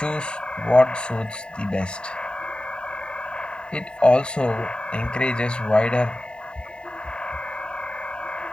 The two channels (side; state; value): right; late; 0.050 ms